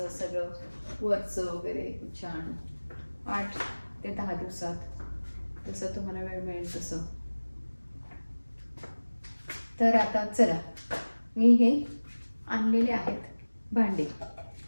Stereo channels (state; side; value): inverted; both; correlation -1.00